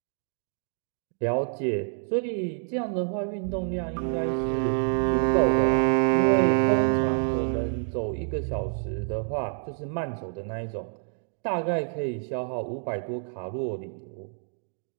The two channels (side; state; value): left; silent; 60 dB below the other